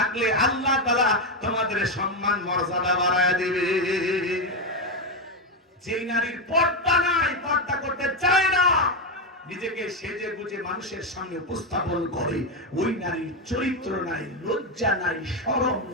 আল্লাহ তাআলা তোমাদের সম্মান মর্যাদা বাড়ায় দিবে। যেই নারীর পর্দা নাই, পর্দা করতে চায় না, নিজেকে সেজে গুজে মানুষের সামনে উপস্থাপন করে, ওই নারীর চরিত্র নাই, লজ্জা নাই, শরম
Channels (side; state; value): both; normal; correlation 0.08